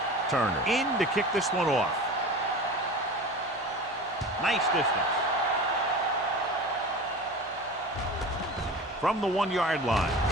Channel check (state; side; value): normal; both; correlation 0.34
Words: Turner in to kick this one off. Nice distance. From the 1-yard line.